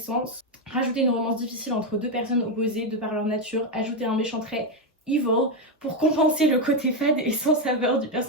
rajouter une romance difficile entre deux personnes opposées de par leur nature, ajouter un méchant trait evil pour compenser le côté fade et sans saveur du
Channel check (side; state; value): both; normal; correlation 0.06